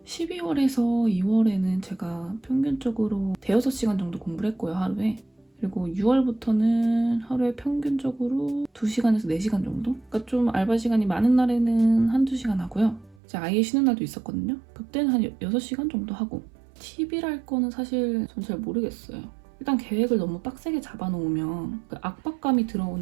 12월에서 2월에는 제가 평균적으로 대여섯 시간 정도 공부를 했고요, 하루에. 그리고 6월부터는 하루에 평균적으로 2시간에서 4시간 정도? 그러니까 좀 알바 시간이 많은 날에는 한두 시간 하고요. 이제 아예 쉬는 날도 있었거든요. 그때는 한 6시간 정도 하고 팁이랄 거는 사실 전 잘 모르겠어요. 일단 계획을 너무 빡세게 잡아놓으면 그 압박감이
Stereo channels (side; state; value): left; drops out; at 13.2 s